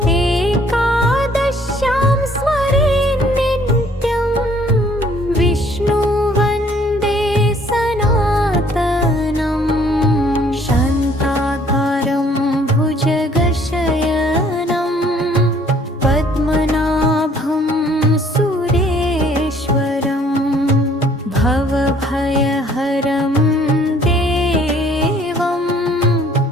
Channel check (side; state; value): both; normal; correlation 0.60